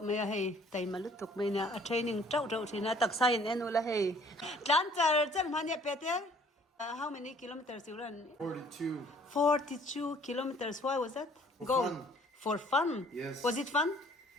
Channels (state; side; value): normal; both; correlation 0.56